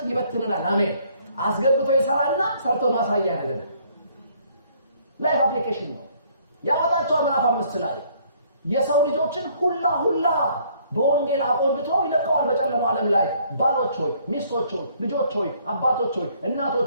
ይበትነናል አሜን አስገብቶ ይሰራልና ሰርቶ ማሳያ ያደርጋል ላይፍ አፕሊኬሽን ነው ያወጣቸው ምዕራፍ 5 ላይ የሰው ልጆችን ሁላ በወንጌል አቆንብቶ ይለቀዋል በጨለማው ዓለም ላይ ባሎች ሆይ ሚስቶች ሆይ ልጆች ሆይ አባቶች ሆይ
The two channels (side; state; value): both; inverted; correlation -0.63